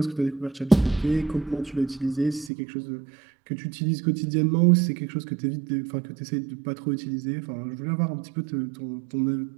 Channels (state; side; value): drops out; left; at 2.5 s